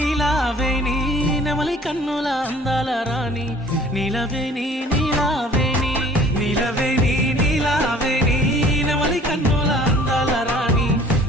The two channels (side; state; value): both; normal; correlation 0.52